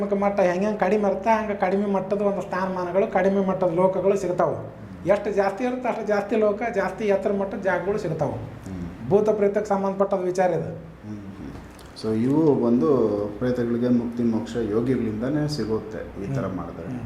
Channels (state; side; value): identical; both; correlation 1.00